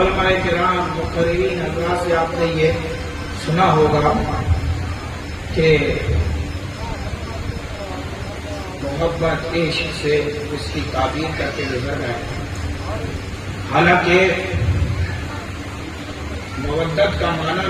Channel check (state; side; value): identical; both; correlation 1.00